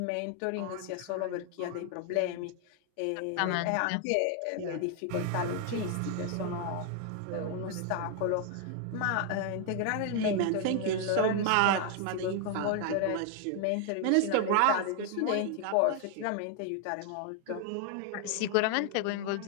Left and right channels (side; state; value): both; different; correlation 0.00